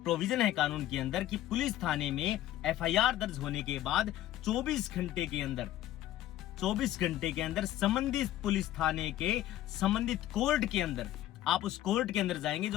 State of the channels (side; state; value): right; quieter; 13.5 dB